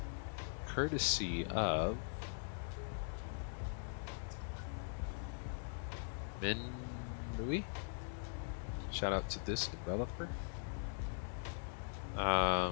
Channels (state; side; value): silent; right; digital silence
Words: Courtesy of Louis. Shout out to this developer.